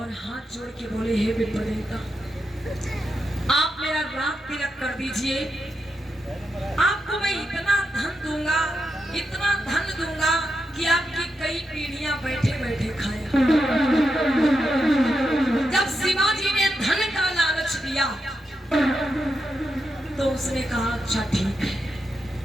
हाथ जोड़ के बोले, हे विप्र देवता, आप मेरा रात तिलक कर दीजिए, आपको मैं इतना धन दूंगा, इतना धन दूंगा कि आपकी कई पीढ़ियां बैठे बैठे खाए। जब शिवाजी ने धन का लालच दिया तो उसने कहा अच्छा ठीक है।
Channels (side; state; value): both; normal; correlation 0.85